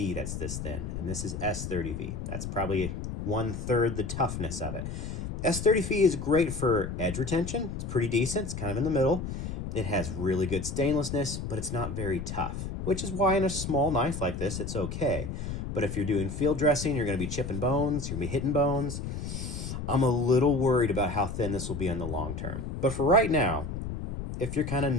that's this thin, and this is S30V. That's probably 1/3 the toughness of it. S30V is great for edge retention. It's pretty decent. It's kind of in the middle. It has really good stainlessness, but it's not very tough, which is why in a small knife like this, it's okay. But if you're doing field dressing, you're going to be chipping bones, you're going to be hitting bones. I'm a little worried about how thin this will be in the long term. But for right now, if you're kind of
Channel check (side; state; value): left; noise; rumble, 6 dB below the sound